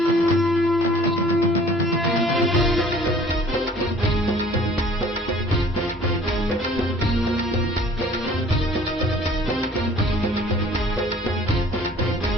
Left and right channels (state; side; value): normal; both; correlation 0.52